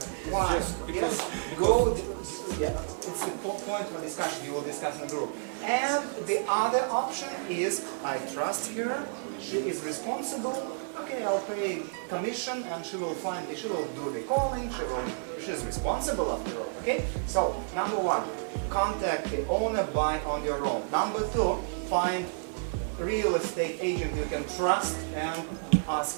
Why? Yes, go. Yeah, it's the point for discussion. You will discuss in the group. And the other option is I trust her. She is responsible. Okay, I'll pay commission, and she will do the calling. She's responsible after all. Okay. So number one, contact the owner, buy on your own. Number two, find real estate agent you can trust and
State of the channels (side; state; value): left; silent; 56 dB below the other